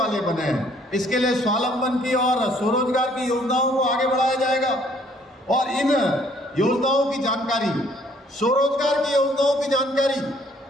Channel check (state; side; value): normal; both; correlation 0.62